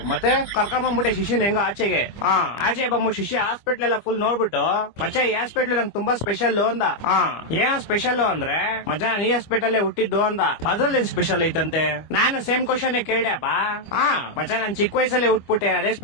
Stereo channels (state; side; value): late; right; 25 ms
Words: ಮತ್ತೆ ಕರ್ಕೊಂಬಂದ್ಬಿಟ್ಟೆ ಶಿಷ್ಯನ ಹೆಂಗ ಆಚೆಗೆ. ಆಚೆ ಬಂದ್ಬಿಟ್ಟು ಶಿಷ್ಯ ಹಾಸ್ಪಿಟ್ಲ್ ಎಲ್ಲ ಫುಲ್ ನೋಡ್ಬಿಟ್ಟು ಮಚ್ಚ ಈ ಹಾಸ್ಪಿಟ್ಲ್ ನಂಗೆ ತುಂಬಾ ಸ್ಪೆಷಲ್ ಅಂದ. ಏನ ಸ್ಪೆಷಲ್ ಅಂದ್ರೆ ಮಚ್ಚ ನೀ ಹಾಸ್ಪಿಟಲ್ ಹುಟ್ಟಿದ್ದು ಅಂದ. ಅದ್ರಲ್ಲಿ ಸ್ಪೆಷಲ್ ಐತಂತೆ. ನಾನು ಸೇಮ್ ಕ್ವಶನ್ ಕೇಳ್ದೆಪ್ಪ. ಮಚ್ಚ ನಾನ್ ಚಿಕ್ಕ ವಯಸ್ಸಲ್ಲಿ ಹುಟ್ಬಿಟ್ಟೆ ಅದೇ